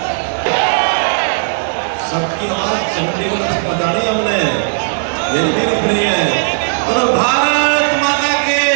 सबकी आवाज चंडीगढ़ से बजानी हमने, ये नहीं है। और भारत माता के,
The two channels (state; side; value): silent; left; 63 dB below the other